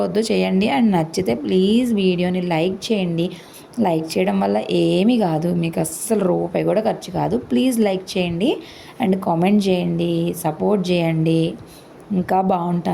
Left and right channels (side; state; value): both; identical; correlation 1.00